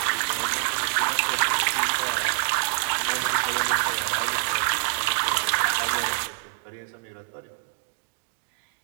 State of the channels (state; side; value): silent; left; digital silence